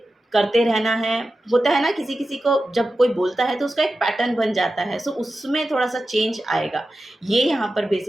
करते रहना है। होता है ना, किसी किसी को जब कोई बोलता है तो उसका एक पैटर्न बन जाता है। सो उसमें थोड़ा सा चेंज आएगा। ये यहाँ पर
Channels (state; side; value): normal; both; correlation 0.92